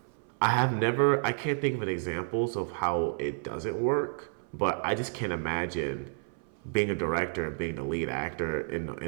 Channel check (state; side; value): silent; left; 57 dB below the other